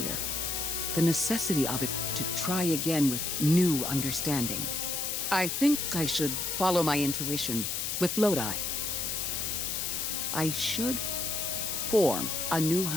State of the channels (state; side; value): noise; left; hiss, 1 dB below the sound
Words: The necessity of it to try again with new understanding. I think I should follow my intuition with Lodi. I should form a new